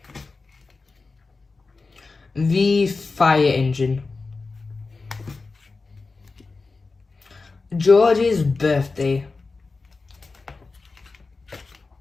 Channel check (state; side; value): quieter; right; 4.0 dB